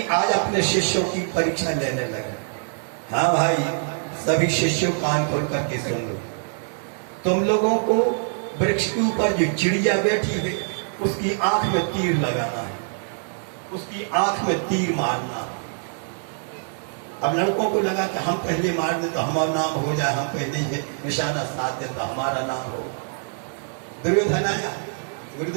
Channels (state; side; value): silent; left; digital silence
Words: आज अपने शिष्यों की परीक्षा लेने लगे। हाँ भाई सभी शिष्यों कान खोल करके सुन लो, तुम लोगों को वृक्ष के ऊपर जो चिड़िया बैठी है उसकी आंख में तीर लगाना है, उसकी आंख में तीर मारना। अब लड़कों को लगा कि हम पहले मार दें तो हमारा नाम हो जाए, हम पहले ही निशाना साध दें तो हमारा नाम हो। दुर्योधन आया,